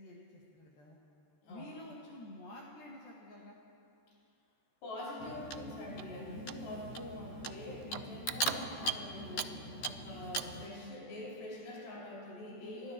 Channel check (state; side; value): late; right; 14 ms